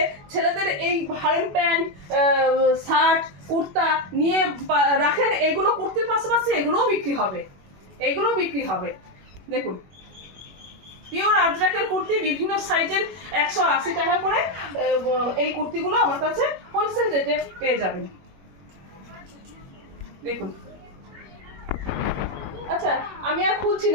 ছেলেদের এই হারেম প্যান্ট, শার্ট, কুর্তা নিয়ে রাখেন, এগুলো কুর্তির পাশাপাশি এগুলোও বিক্রি হবে, এগুলোও বিক্রি হবে। দেখুন পিওর আজরাকের কুর্তি বিভিন্ন সাইজের 180 টাকা করে, এই কুর্তিগুলো আমার কাছে হোলসেল রেটে পেয়ে যাবেন। দেখুন আচ্ছা আমি আর খুলছি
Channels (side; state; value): left; late; 21 ms